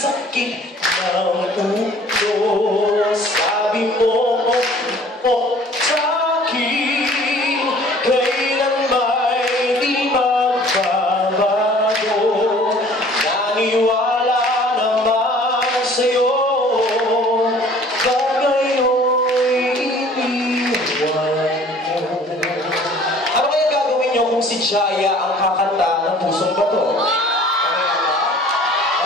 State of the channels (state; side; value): normal; both; correlation 0.51